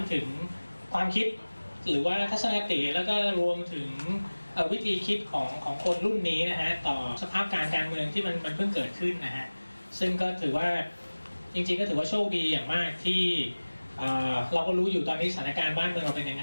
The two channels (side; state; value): both; inverted; correlation -1.00